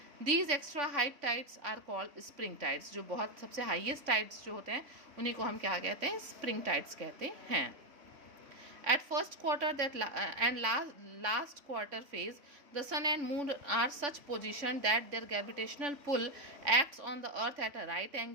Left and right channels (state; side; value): late; left; 3.5 ms